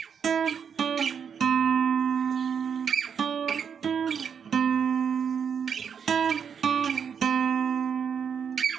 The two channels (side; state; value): left; quieter; 7.1 dB